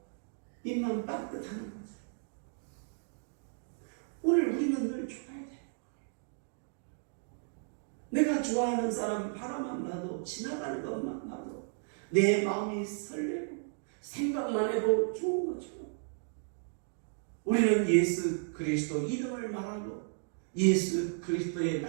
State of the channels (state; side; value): silent; left; digital silence